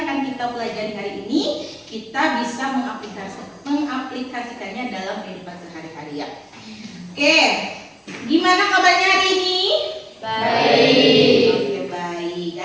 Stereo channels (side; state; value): both; identical; correlation 1.00